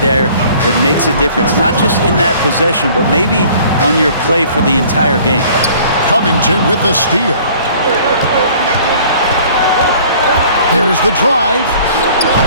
there that makes a difference. Not just in that possession, but maybe on your play for the entire game. Covington with the steal. There's the drive.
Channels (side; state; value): both; inverted; correlation -0.52